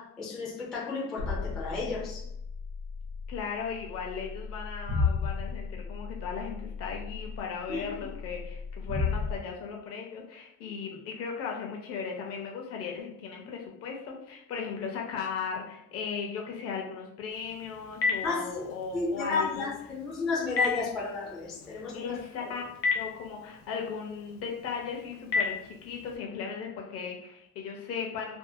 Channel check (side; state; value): right; quieter; 4.6 dB